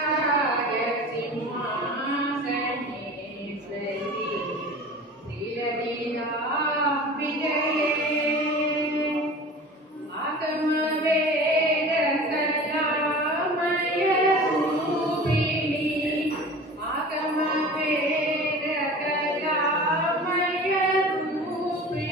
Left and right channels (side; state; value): both; normal; correlation 0.38